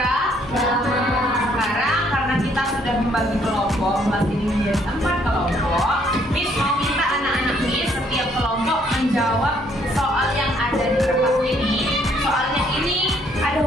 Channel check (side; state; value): both; normal; correlation 0.67